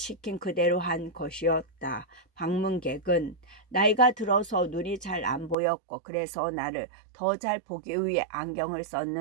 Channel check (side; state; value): left; drops out; at 5.6 s